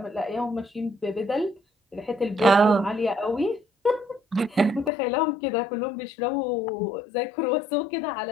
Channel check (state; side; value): drops out; right; at 4.9 s